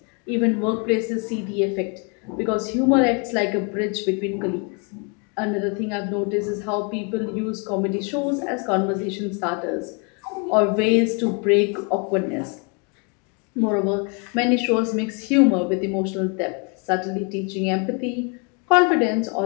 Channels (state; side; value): quieter; right; 34.4 dB